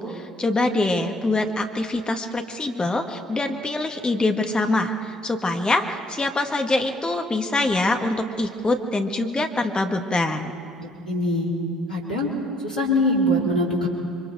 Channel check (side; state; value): both; normal; correlation 0.67